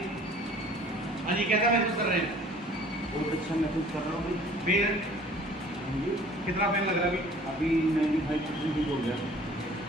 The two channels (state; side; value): normal; both; correlation 0.51